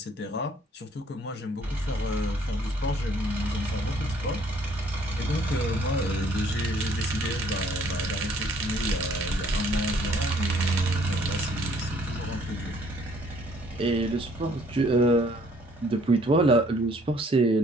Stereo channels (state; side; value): normal; both; correlation 0.61